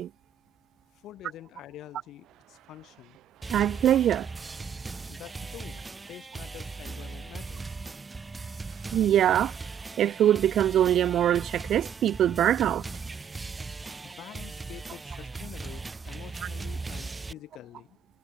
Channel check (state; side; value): quieter; left; 9.3 dB